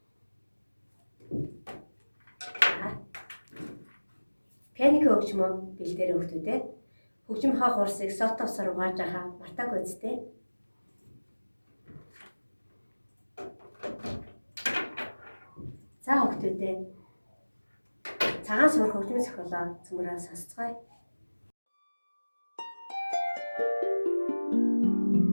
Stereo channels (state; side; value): inverted; both; correlation -1.00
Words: Пианко хөгжмөө бэлдээрэй хүүхдүүдээ. Хөгжим хаа хурсыг сотовсоор угааж байгаа мартаагүй үстэй. За хүүхдүүдээ. Цагаан суурах хөгжмийн зохиолоо цөмрөө сонсцгоё.